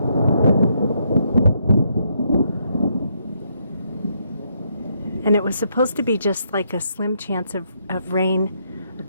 And it was supposed to be just like a slim chance of rain.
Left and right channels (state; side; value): inverted; both; correlation -0.75